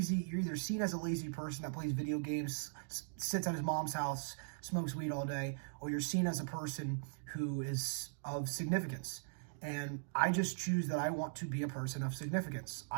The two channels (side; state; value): left; silent; digital silence